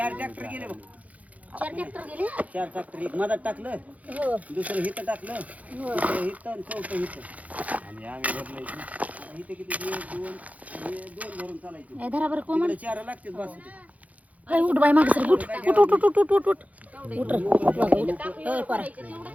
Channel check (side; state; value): left; late; 0.071 ms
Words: ट्रॅक्टर गेले बघ. 4 ट्रॅक्टर गेले. 4 ट्रॅक्टर एक मधात टाकलं, हो दुसरं हिथं टाकलं, तिसरं हिथं आणि चौथं हिथं. आणि आम्ही भरले इथे किती 2 भरून चालायचे. धरा बरं कोमल. 4 लागते बस. काय उठ बाई मागे सर उठ उठ उठ उठ उठ उठ उठ उठ रे पारा